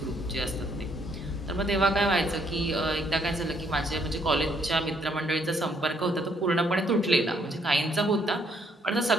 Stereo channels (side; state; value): both; normal; correlation 0.69